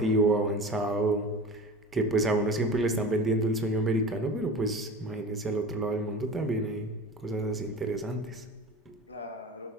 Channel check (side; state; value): both; normal; correlation 0.34